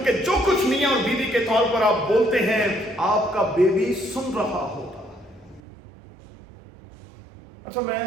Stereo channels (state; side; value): drops out; left; at 5.6 s